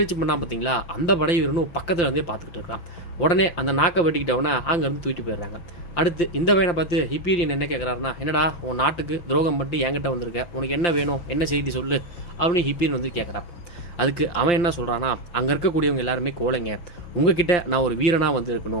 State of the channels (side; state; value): right; late; 5.8 ms